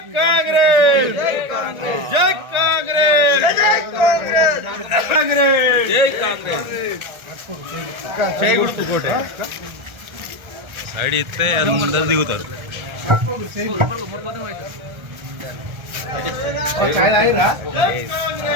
కాంగ్రెస్ జై కాంగ్రెస్ జై కాంగ్రెస్ చేయకూడదు కోటే సైడ్ ఇస్తే అది ముందర దిగుతారు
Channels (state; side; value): late; left; 1.3 ms